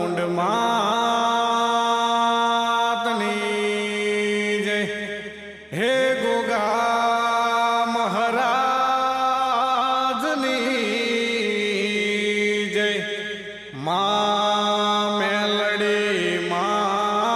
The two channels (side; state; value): both; identical; correlation 1.00